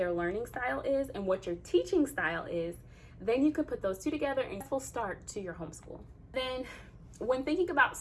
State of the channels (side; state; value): both; identical; correlation 1.00